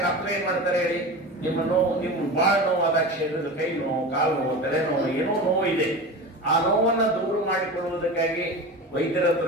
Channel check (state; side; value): normal; both; correlation 0.29